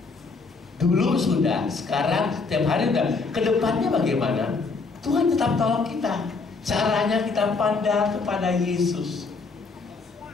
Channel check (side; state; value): right; quieter; 4.3 dB